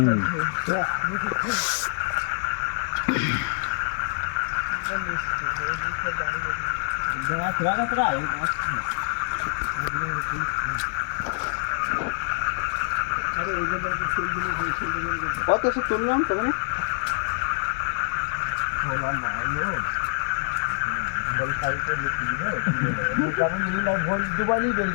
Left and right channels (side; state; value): right; silent; 56 dB below the other